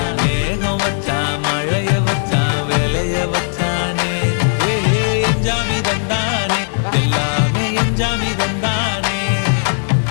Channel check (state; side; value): silent; right; digital silence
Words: மேகம் வச்சான் மழைய வச்சான் விளைய வச்சானே ஏ எஞ்சாமி தந்தானே எல்லாமே எஞ்சாமி தந்தானே